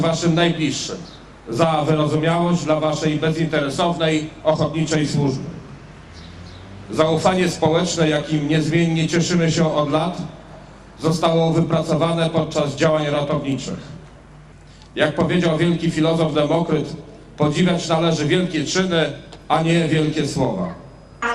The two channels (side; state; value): both; identical; correlation 1.00